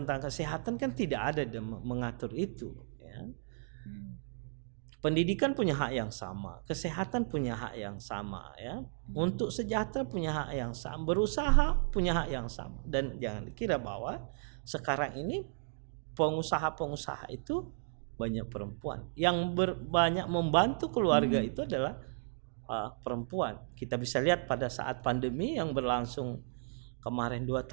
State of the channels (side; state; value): left; silent; digital silence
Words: kesehatan kan tidak ada mengatur itu ya. Pendidikan punya hak yang sama, kesehatan punya hak yang sama ya. Untuk sejahtera punya hak yang sama, berusaha punya hak yang sama. Dan jangan dikira bahwa sekarang ini pengusaha-pengusaha itu banyak perempuan. Yang banyak membantu keluarga itu adalah perempuan. Kita bisa lihat pada saat pandemi yang berlangsung kemarin 2